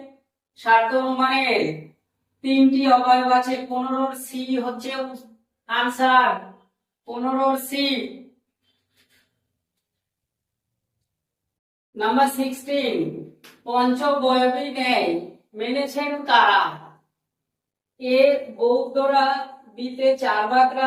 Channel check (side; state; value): both; identical; correlation 1.00